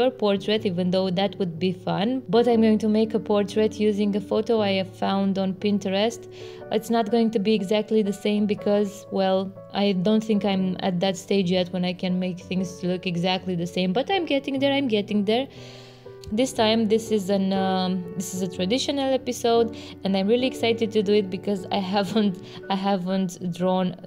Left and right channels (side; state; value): both; identical; correlation 1.00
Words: portrait, even though that would be fun, but I'm going to make a portrait using a photo I have found on Pinterest. It's not going to be exactly the same because, well, I don't think I'm at that stage yet when I can make things look exactly the same, but I'm getting there. This time this is a traditional episode and I'm really excited to do it because I haven't drawn